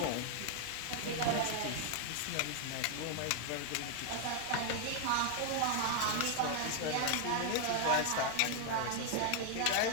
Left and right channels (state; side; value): different; both; correlation 0.00